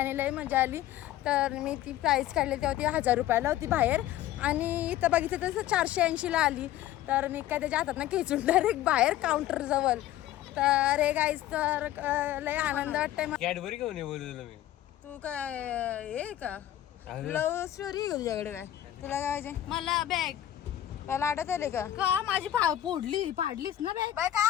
लय मजा आली. तर मी ती प्राईस काढली तेव्हा ती 1000 रुपयाला होती बाहेर आणि इथं बघितलं तसं 480ला आली. तर मी काय त्याच्या हातात ना खेचून डायरेक्ट बाहेर काउंटरजवळ. तर हे गाईज तर लय आनंद वाटतंय. कॅडबरी घेऊन ये बोलू मी. तू काय हे का लव्ह स्टोरी आहे का तुझ्याकडे? काय तुला काय पाहिजे? मला बॅग मला आठवत आले का माझी पाडलीस ना बॅग. बाय काय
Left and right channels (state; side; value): quieter; right; 13.1 dB